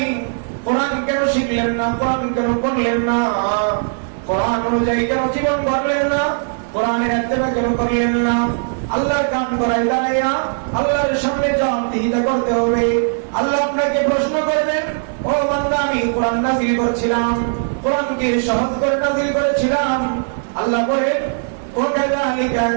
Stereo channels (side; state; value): left; silent; 58 dB below the other